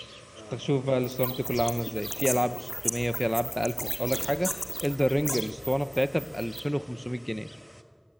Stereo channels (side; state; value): both; identical; correlation 1.00